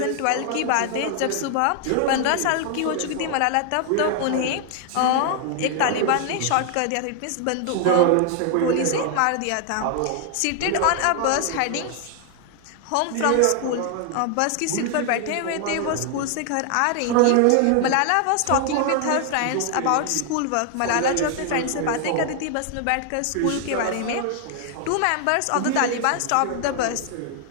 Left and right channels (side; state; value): both; different; correlation 0.00